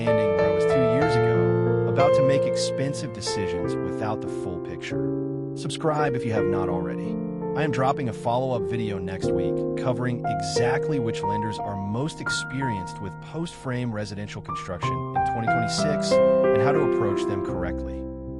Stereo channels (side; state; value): both; identical; correlation 1.00